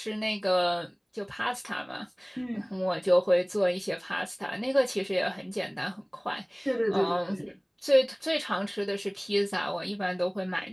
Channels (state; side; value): identical; both; correlation 1.00